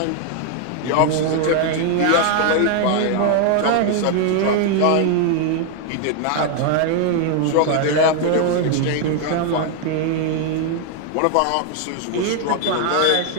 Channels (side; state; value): both; different; correlation 0.00